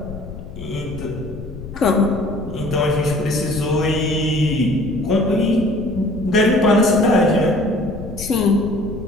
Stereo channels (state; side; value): noise; left; rumble, 12 dB below the sound